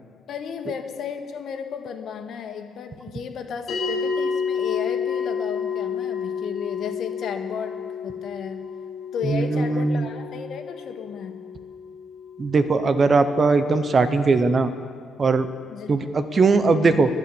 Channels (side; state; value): both; normal; correlation 0.79